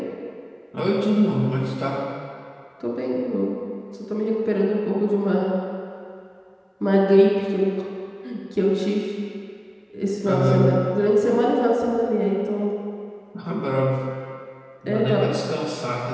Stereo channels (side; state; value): both; identical; correlation 1.00